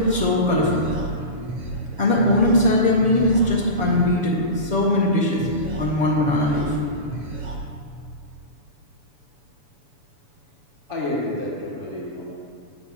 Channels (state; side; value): late; left; 7.0 ms